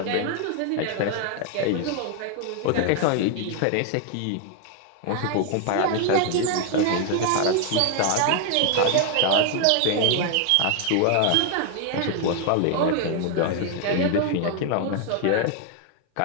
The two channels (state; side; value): different; both; correlation 0.00